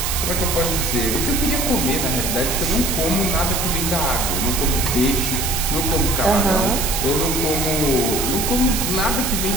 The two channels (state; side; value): noise; right; hiss, 1 dB below the sound